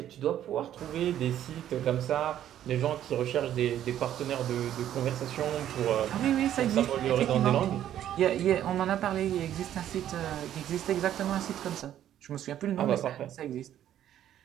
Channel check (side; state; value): left; quieter; 11.3 dB